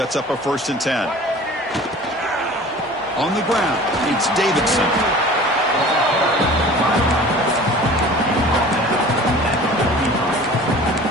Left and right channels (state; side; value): normal; both; correlation 0.43